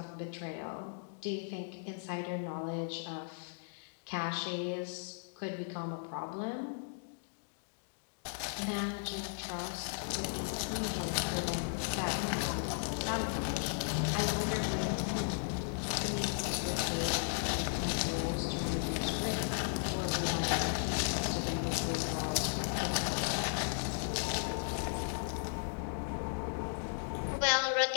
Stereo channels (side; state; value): right; silent; digital silence